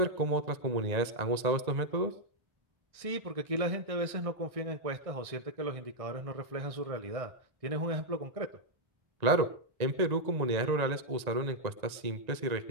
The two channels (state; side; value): late; left; 1.8 ms